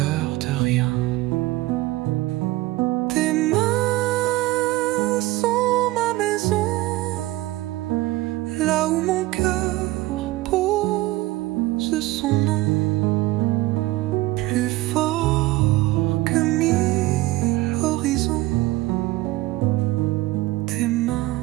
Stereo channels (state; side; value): quieter; left; 18.3 dB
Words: de rien. Tes mains sont ma maison, là où mon cœur pose son nom, plus fort que 1000 horizons. Tes mains,